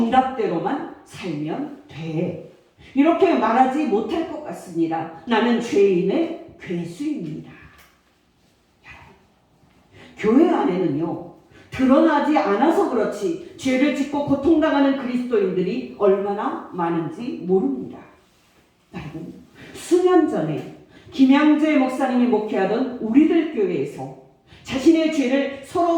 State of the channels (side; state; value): both; identical; correlation 1.00